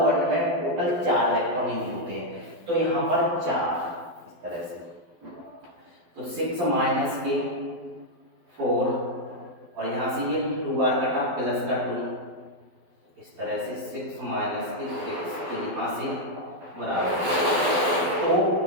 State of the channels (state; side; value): late; left; 12 ms